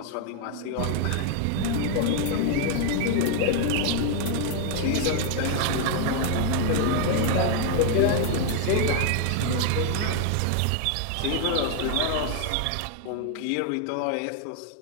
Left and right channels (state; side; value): different; both; correlation 0.00